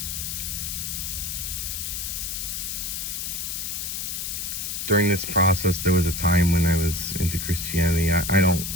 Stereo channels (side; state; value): left; noise; hiss, 4 dB below the sound